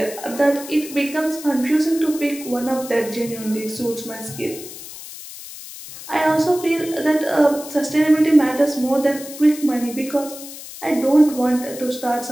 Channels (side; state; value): left; noise; hiss, 13 dB below the sound